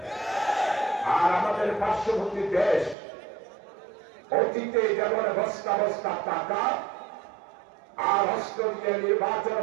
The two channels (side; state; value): left; drops out; at 3.0 s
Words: আর আমাদের পার্শ্ববর্তী দেশ অতীতে যেমন বস্তা বস্তা টাকা আর অস্ত্র দিয়ে নির্বাচন